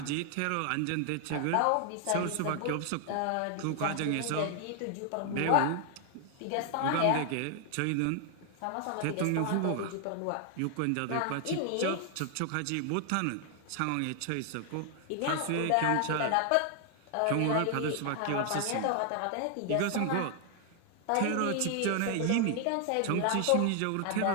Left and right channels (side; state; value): both; different; correlation 0.00